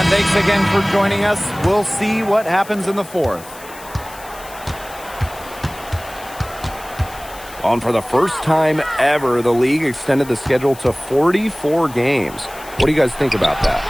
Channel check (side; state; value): left; noise; hiss, 18 dB below the sound